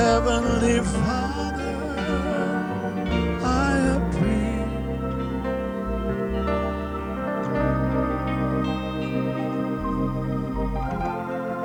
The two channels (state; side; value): identical; both; correlation 1.00